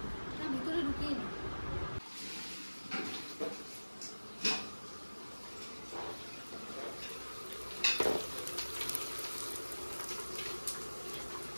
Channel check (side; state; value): both; inverted; correlation -1.00